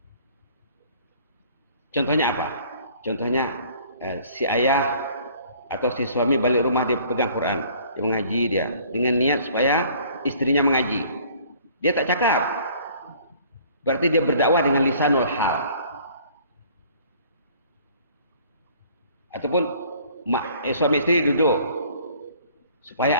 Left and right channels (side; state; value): both; inverted; correlation -0.54